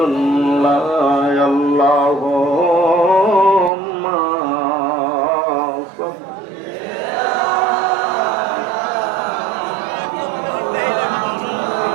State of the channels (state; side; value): drops out; left; at 3.7 s